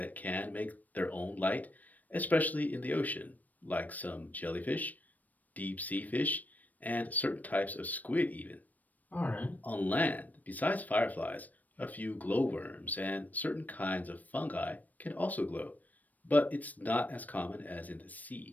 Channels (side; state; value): right; late; 0.080 ms